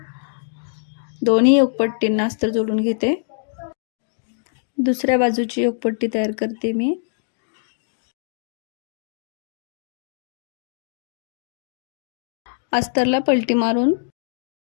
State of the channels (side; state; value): right; silent; digital silence